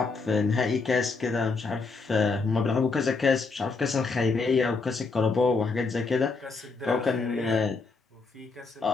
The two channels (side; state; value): right; quieter; 4.2 dB